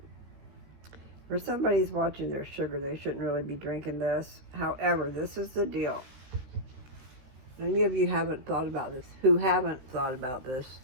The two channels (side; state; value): left; late; 15 ms